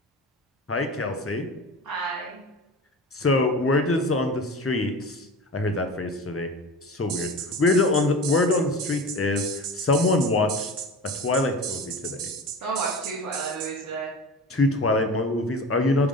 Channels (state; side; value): normal; both; correlation 0.33